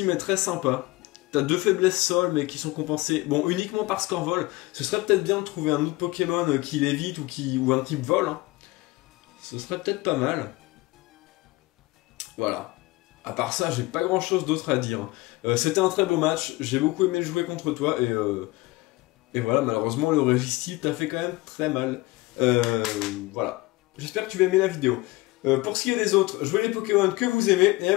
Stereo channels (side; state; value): right; quieter; 21.2 dB